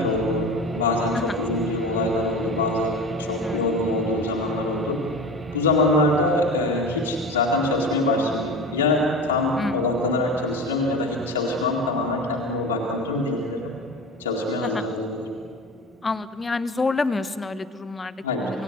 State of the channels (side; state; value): both; normal; correlation 0.31